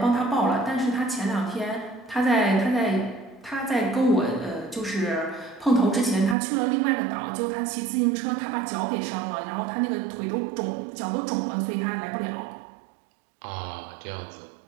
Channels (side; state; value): left; drops out; at 6.4 s